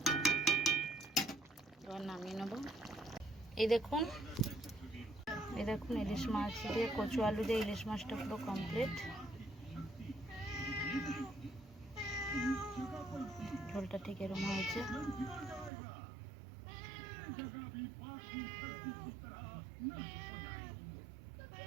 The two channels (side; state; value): left; drops out; at 15.7 s